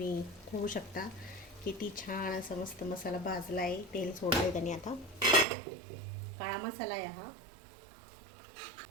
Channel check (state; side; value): drops out; left; at 5.5 s